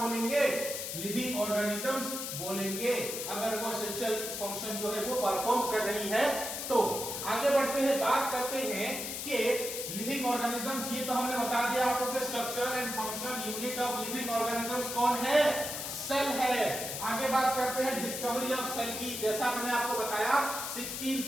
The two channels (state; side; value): noise; left; hiss, 5 dB below the sound